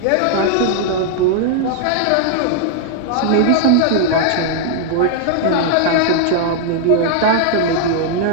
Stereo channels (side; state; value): both; different; correlation 0.00